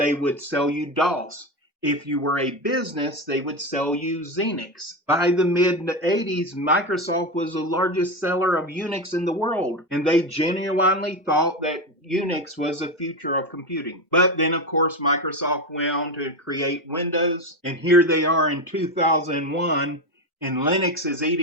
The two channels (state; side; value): normal; both; correlation 0.16